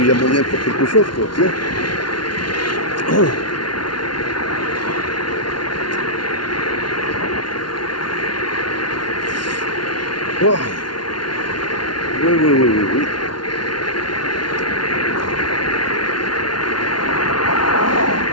y a moyen de faire quelque chose, quoi, tu sais. Oh. Oui, oui, oui, oui, oui.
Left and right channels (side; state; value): right; late; 0.71 ms